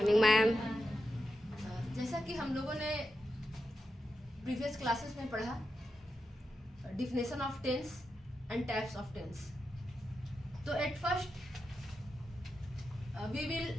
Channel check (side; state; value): both; normal; correlation 0.88